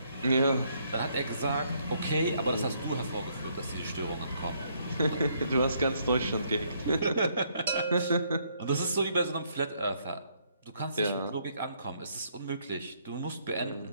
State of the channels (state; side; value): inverted; both; correlation -0.70